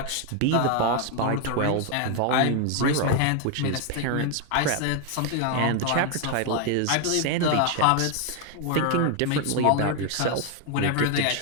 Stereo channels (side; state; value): both; different; correlation 0.01